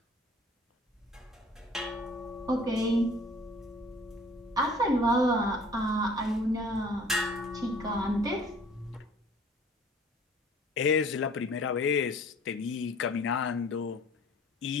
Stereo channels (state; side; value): normal; both; correlation 0.51